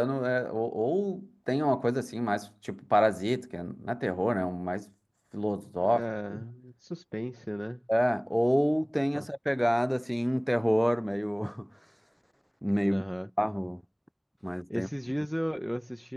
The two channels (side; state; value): both; identical; correlation 1.00